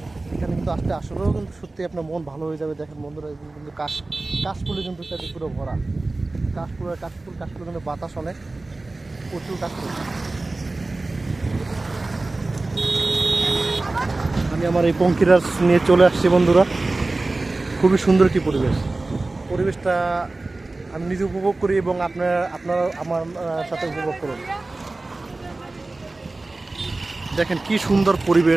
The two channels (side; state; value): left; quieter; 3.1 dB